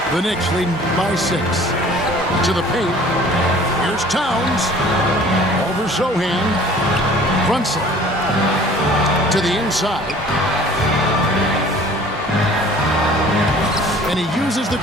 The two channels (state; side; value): normal; both; correlation 0.49